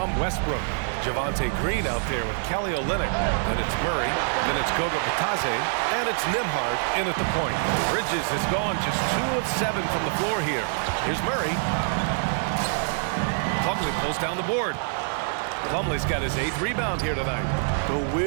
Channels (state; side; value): silent; left; 61 dB below the other